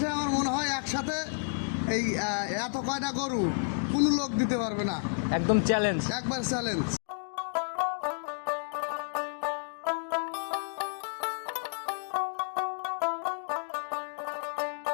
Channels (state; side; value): silent; right; digital silence